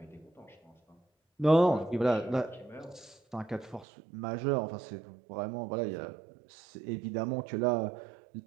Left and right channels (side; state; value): left; drops out; at 3.9 s